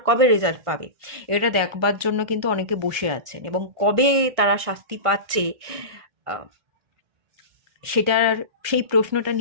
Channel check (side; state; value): left; late; 1.6 ms